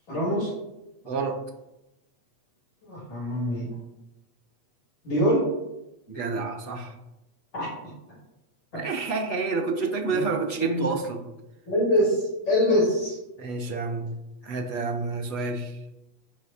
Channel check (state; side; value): late; right; 8.2 ms